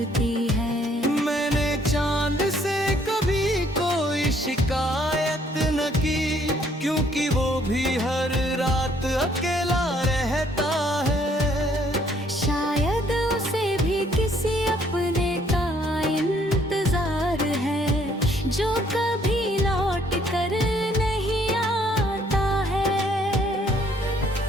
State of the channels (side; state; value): both; normal; correlation 0.65